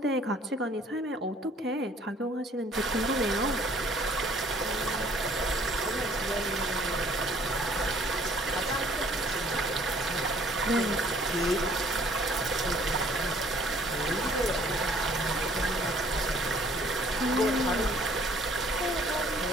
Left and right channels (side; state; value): both; normal; correlation 0.57